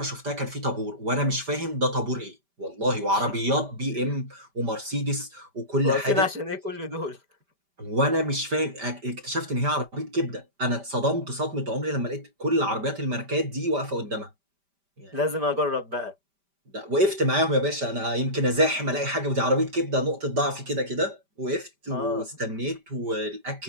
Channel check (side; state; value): left; late; 5.1 ms